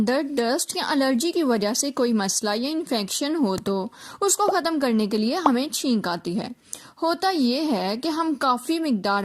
डस्ट या एलर्जी की वजह से कोई मसला या इन्फेक्शन हो तो उसको खत्म करने के लिए हमें छींक आती है। होता ये है कि हम काफ़ी मिकदार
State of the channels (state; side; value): identical; both; correlation 1.00